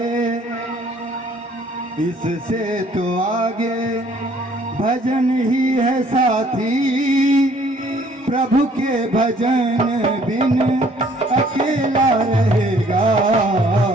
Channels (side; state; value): both; normal; correlation 0.60